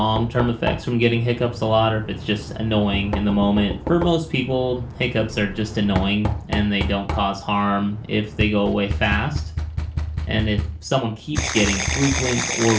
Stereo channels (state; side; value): identical; both; correlation 1.00